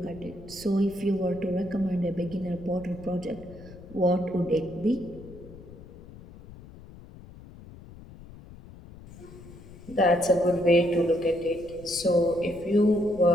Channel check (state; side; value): noise; left; rumble, 18 dB below the sound